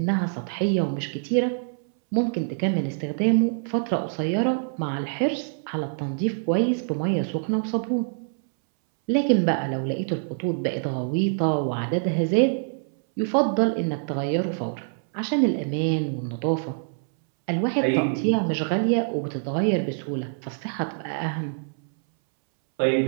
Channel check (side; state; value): left; silent; 62 dB below the other